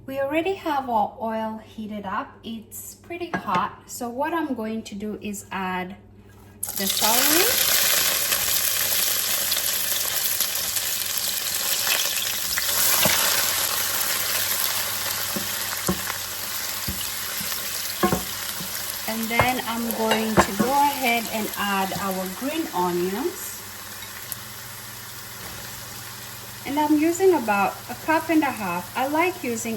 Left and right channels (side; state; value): both; identical; correlation 1.00